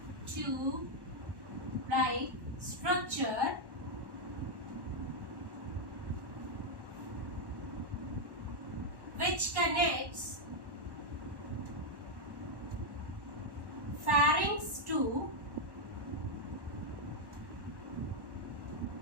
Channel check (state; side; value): late; left; 1.1 ms